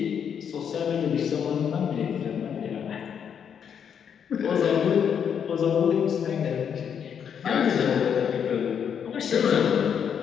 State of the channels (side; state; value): right; quieter; 7.8 dB